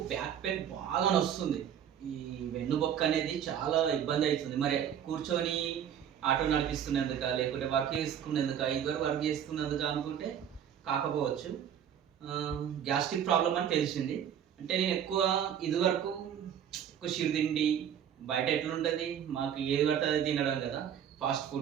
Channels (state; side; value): quieter; left; 9.2 dB